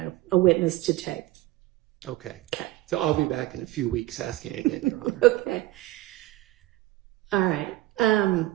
a witness to take. Okay. So I'll be back in a few weeks asking again, Your Honor. Okay. All right.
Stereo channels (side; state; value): left; quieter; 17.1 dB